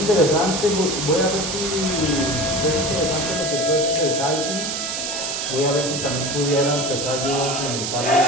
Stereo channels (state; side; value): noise; right; hiss, 3 dB below the sound